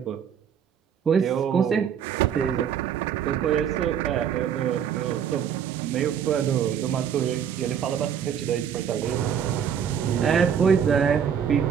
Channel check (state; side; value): quieter; left; 8.2 dB